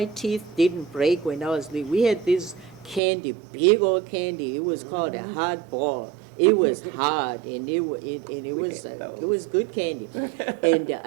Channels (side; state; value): left; drops out; at 3.0 s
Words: teeth didn't break when I was little. We had this candy, big old candy. It was called a hard ball. It was hard, and it was good candy. And